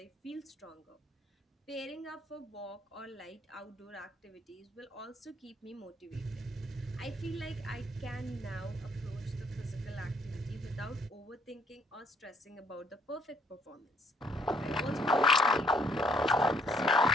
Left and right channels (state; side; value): normal; both; correlation 0.64